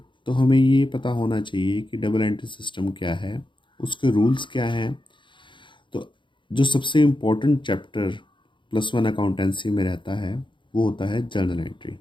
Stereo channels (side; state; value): right; late; 0.23 ms